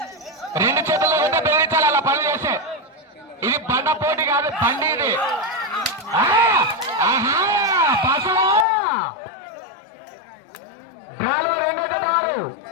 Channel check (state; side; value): drops out; right; at 8.7 s